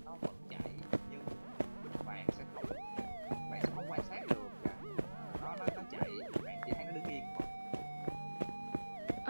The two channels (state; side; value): inverted; both; correlation -1.00